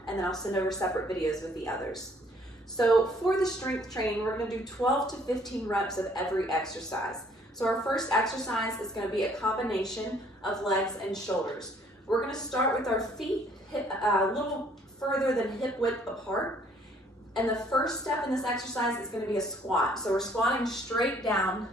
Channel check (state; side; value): normal; both; correlation 0.61